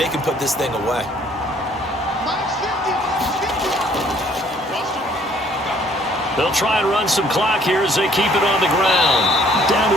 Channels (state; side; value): normal; both; correlation 0.60